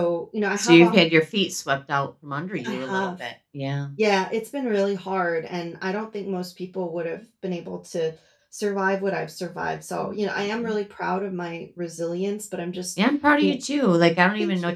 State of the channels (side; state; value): both; identical; correlation 1.00